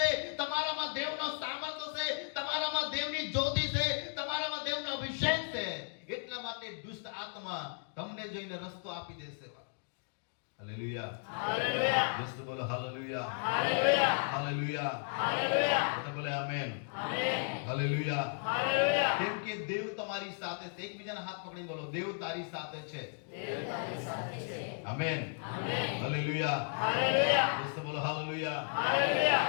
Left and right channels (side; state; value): right; silent; 55 dB below the other